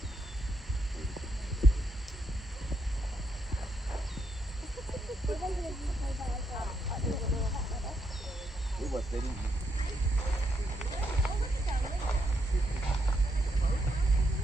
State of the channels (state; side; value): normal; both; correlation 0.78